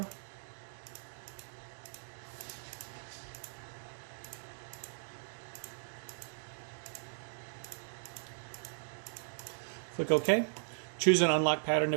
Click OK. Choose an unlock pattern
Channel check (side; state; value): left; silent; digital silence